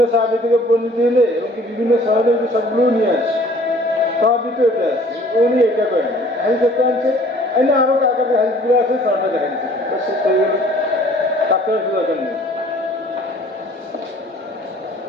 সাহাবী থেকে বর্ণিত হলে এবং কি বিভিন্ন সনদের সবগুলো নিয়ে আসে, সবই তো এটা আছে, উনি এটা করেন হাদিস একটা আনছে, না আরো কাকার হাদিসগুলো আছে, সনটা দেখা দিচ্ছে, শেষ হয়ে গেল, কাকার দরকার নেই।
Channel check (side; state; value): both; normal; correlation 0.53